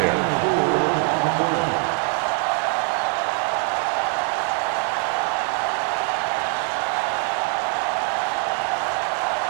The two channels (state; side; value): quieter; left; 36.9 dB